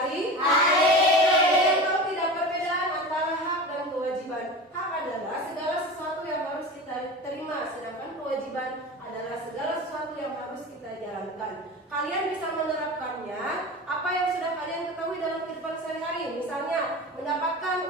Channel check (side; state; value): both; normal; correlation 0.31